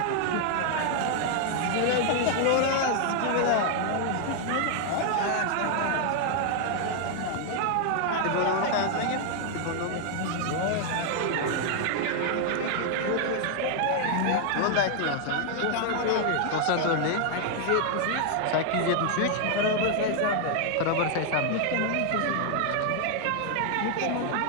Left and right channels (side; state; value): both; different; correlation 0.00